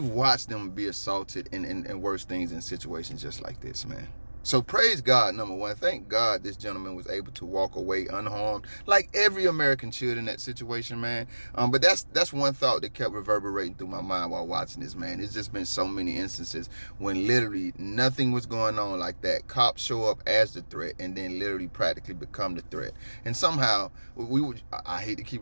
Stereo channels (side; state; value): both; inverted; correlation -1.00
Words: watched them be assaulted and worse things in situations just like this, man. So praise God, number one. Thank God this gentleman was able to walk away unharmed, like every American should in that situation, man. But that's one thought that kept reverberating through my mind while watching this, man. It's just been so many instances when literally nothing was going on like that. Cops show up as the threat and then literally practically become the threat. And somehow, I hate to keep